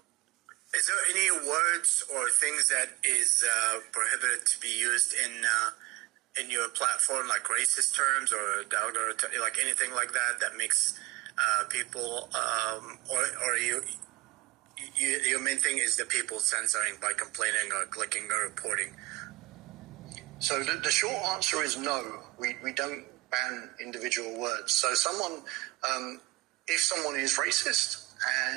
Is there any words or things that is prohibited to be used in your platform, like racist terms or like anything like that makes people or your main thing is the people censoring by complaining or clicking or reporting? So the short answer is no. We don't ban individual words. So if someone is racist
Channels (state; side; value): quieter; left; 19.0 dB